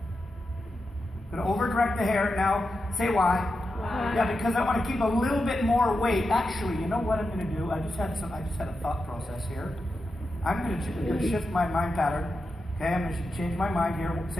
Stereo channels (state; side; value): normal; both; correlation 0.89